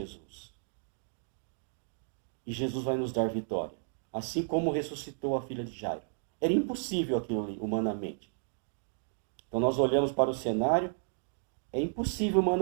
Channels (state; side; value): silent; left; digital silence